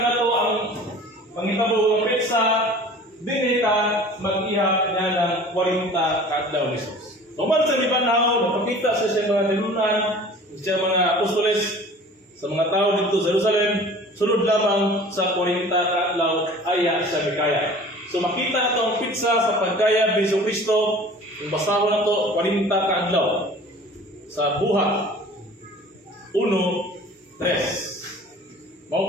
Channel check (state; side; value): normal; both; correlation 0.45